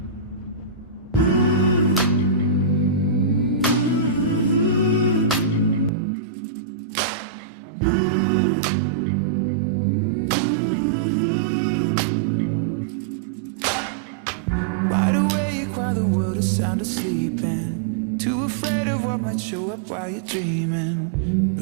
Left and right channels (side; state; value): left; drops out; at 5.9 s